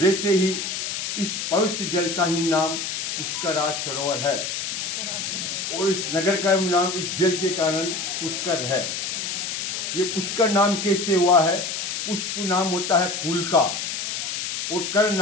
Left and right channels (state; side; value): noise; left; hiss, 3 dB below the sound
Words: ही इस पवित्र जल का ही नाम पुष्कराज सरोवर है और इस नगर का नाम इस जल के कारण पुष्कर है। ये पुष्कर नाम कैसे हुआ है? पुष्प नाम होता है फूल का और कर